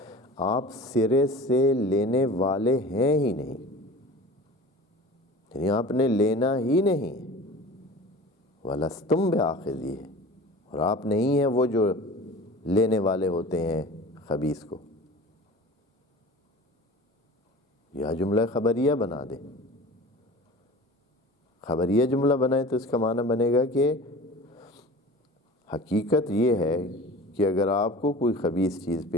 آپ سرے سے لینے والے ہیں ہی نہیں، یعنی آپ نے لینا ہی نہیں، وَلَسْتُمْ بِآخِذِيهِ، اور آپ نہیں ہیں وہ جو لینے والے ہوتے ہیں خبیث کو. یا جملہ خبریہ بنا دیں. خبریہ جملہ بنائیں تو اس کا معنی بنے گا کہ حقیقت یہ ہے کہ اگر آپ کو کوئی خبیث چیز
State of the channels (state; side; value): normal; both; correlation 0.39